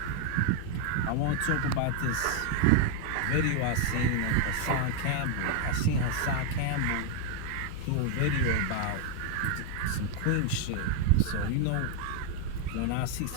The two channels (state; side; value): different; both; correlation 0.00